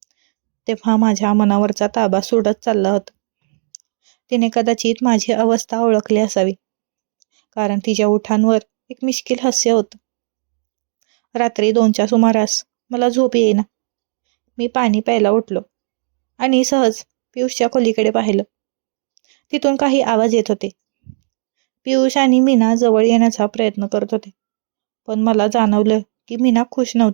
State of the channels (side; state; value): left; silent; digital silence